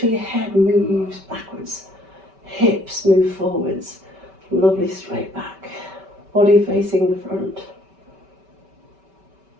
your head moves backwards. Hips move forwards. Lovely straight back. Body facing the front.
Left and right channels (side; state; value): left; late; 5.2 ms